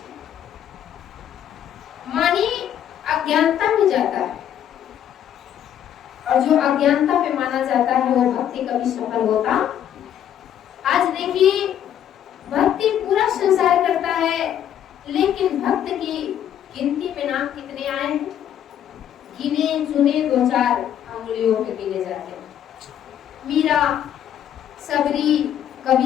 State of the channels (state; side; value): quieter; right; 10.2 dB